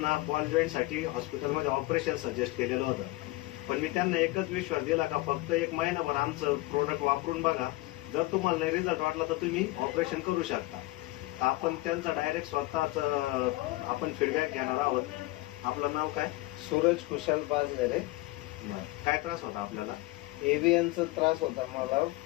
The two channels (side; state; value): right; quieter; 19.9 dB